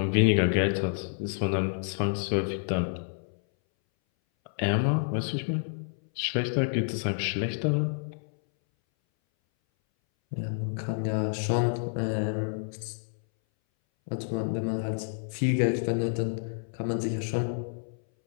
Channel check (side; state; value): right; silent; 59 dB below the other